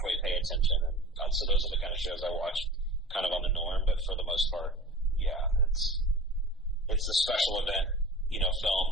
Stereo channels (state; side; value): normal; both; correlation 0.38